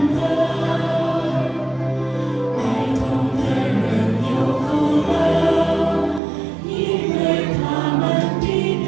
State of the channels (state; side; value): drops out; left; at 6.2 s